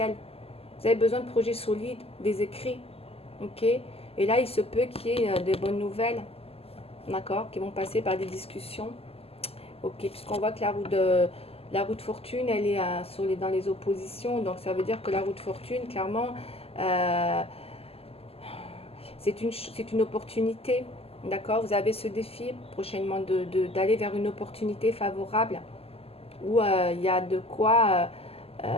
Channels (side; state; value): right; late; 0.29 ms